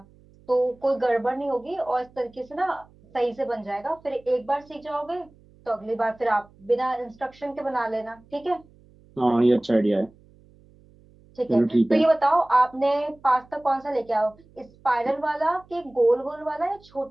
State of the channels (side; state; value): right; noise; hum, 28 dB below the sound